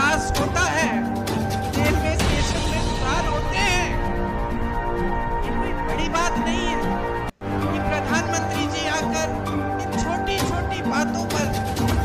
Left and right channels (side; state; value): both; identical; correlation 1.00